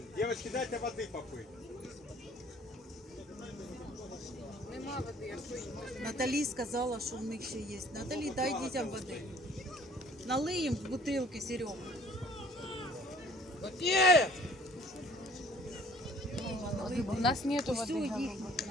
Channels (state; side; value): normal; both; correlation 0.55